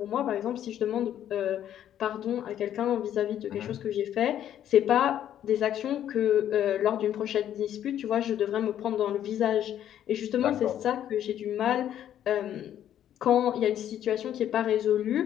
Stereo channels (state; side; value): quieter; right; 10.8 dB